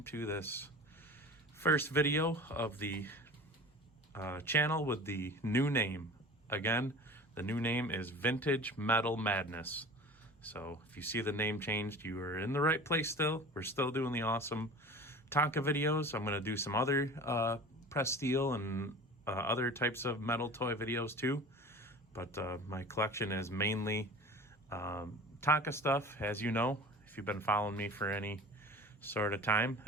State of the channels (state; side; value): normal; both; correlation 0.38